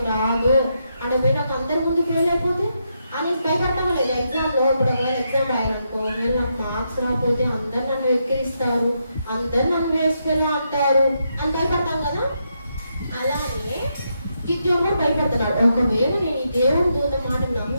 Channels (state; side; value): inverted; both; correlation -0.81